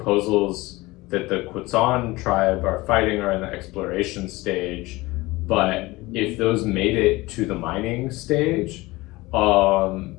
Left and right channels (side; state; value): right; quieter; 21.0 dB